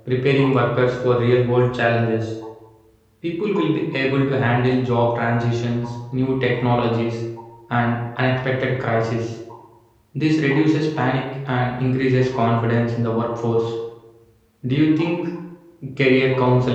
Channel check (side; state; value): both; identical; correlation 1.00